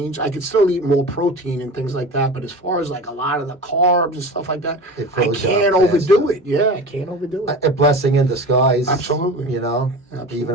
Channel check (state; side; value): normal; both; correlation 0.33